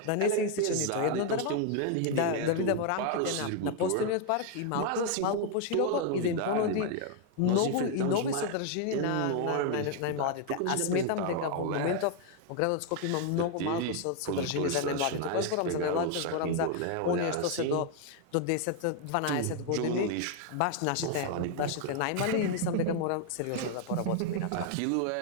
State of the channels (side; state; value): both; different; correlation 0.00